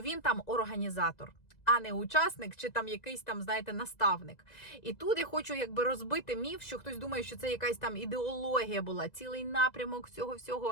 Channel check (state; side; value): late; right; 2.0 ms